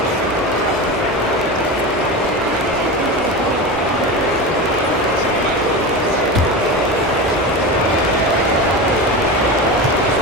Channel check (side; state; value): both; normal; correlation 0.24